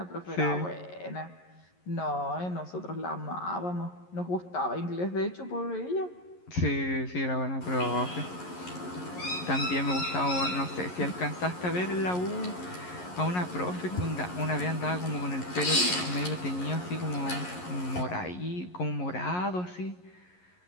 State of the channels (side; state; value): right; late; 11 ms